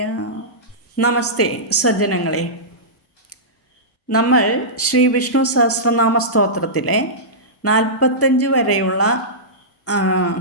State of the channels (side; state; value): both; normal; correlation -0.16